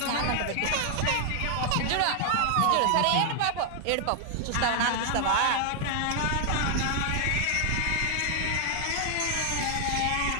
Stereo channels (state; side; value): different; both; correlation 0.00